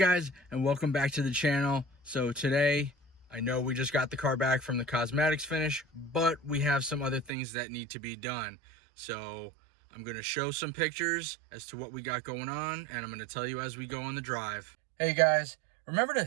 and welcome back to the channel. So today, I know we just got the car back from the cosmetics finish, but we have some other things that need to be done. So I'm going to show some pictures as to what we got going on, and I'm going to tell you as we go on the drive. Hey guys, remember to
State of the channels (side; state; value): left; drops out; at 7.3 s